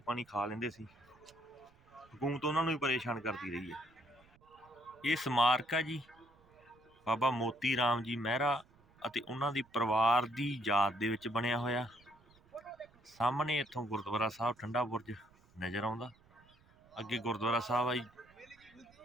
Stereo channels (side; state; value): right; noise; rumble, 29 dB below the sound